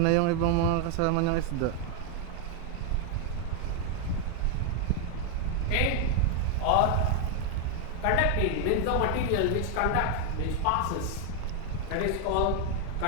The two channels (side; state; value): both; different; correlation 0.00